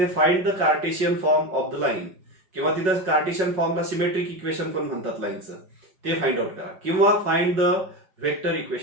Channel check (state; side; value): late; left; 5.4 ms